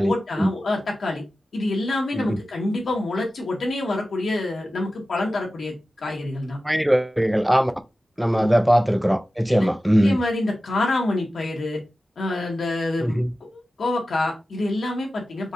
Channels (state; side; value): normal; both; correlation 0.95